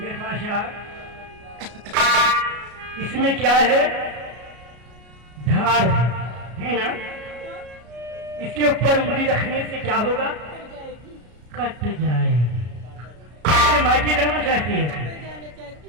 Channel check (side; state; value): left; late; 33 ms